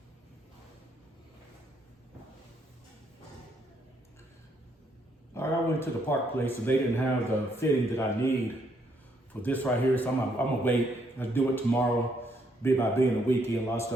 All right, I went to the park place and they didn't have the fitting that I need for this right here. So I'm gonna wait. I'll do it tomorrow. By being a weekend, a lot of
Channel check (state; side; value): normal; both; correlation 0.72